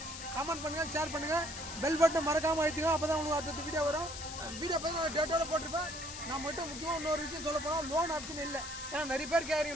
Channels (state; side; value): noise; left; hiss, 9 dB below the sound